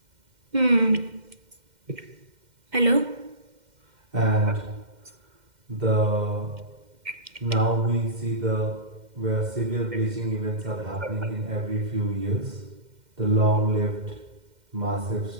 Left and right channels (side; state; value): left; late; 2.1 ms